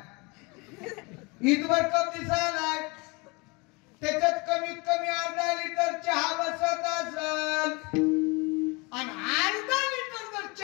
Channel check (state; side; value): quieter; right; 27.8 dB